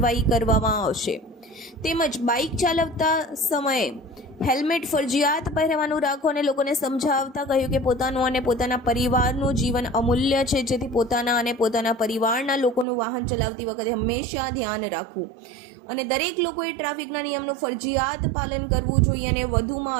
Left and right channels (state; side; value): drops out; left; at 12.9 s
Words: કરવામાં આવશે. તેમજ બાઇક ચાલવતા સમયે હેલ્મેટ ફરજિયાત પહેરવાનું રાખો અને લોકોને સમજાવતા કહ્યું કે પોતાનું અને પોતાના પરિવારનું જીવન અમૂલ્ય છે, જેથી પોતાના અને પોતાના પરિવારના લોકોનું વાહન ચલાવતી વખતે હંમેશા ધ્યાન રાખવું અને દરેક લોકોએ ટ્રાફિકના નિયમનું ફરજિયાત પાલન કરવું જોઈએ અને વધુમાં